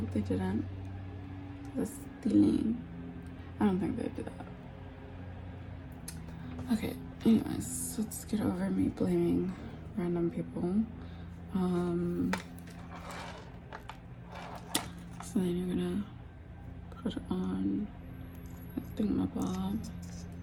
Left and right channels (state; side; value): identical; both; correlation 1.00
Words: they didn't. That's stealing. I don't think they did that. Okay, anyways, let's get over me blaming random people. So then you're gonna put it on the thingamabob,